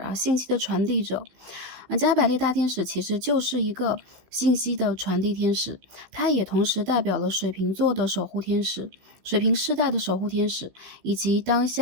信息的传递者。加百列大天使其实就是一个信息的传递天使，它也同时代表了水瓶座的守护天使、水瓶世代的守护天使，以及当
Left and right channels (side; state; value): left; late; 16 ms